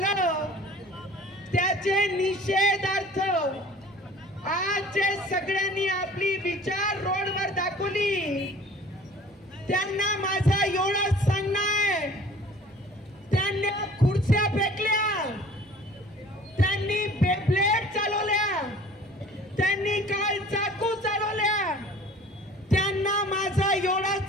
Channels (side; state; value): both; normal; correlation 0.48